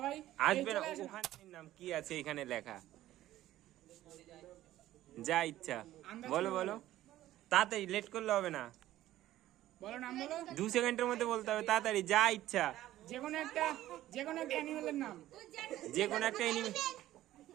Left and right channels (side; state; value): left; quieter; 14.3 dB